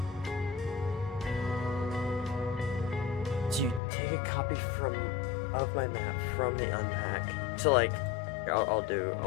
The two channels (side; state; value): right; drops out; at 3.8 s